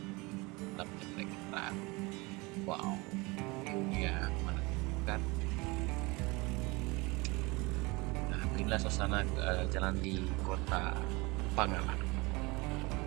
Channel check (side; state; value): left; quieter; 25.0 dB